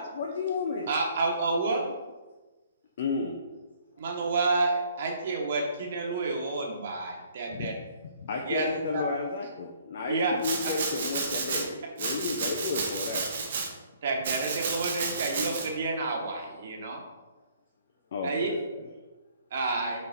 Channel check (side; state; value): both; inverted; correlation -0.60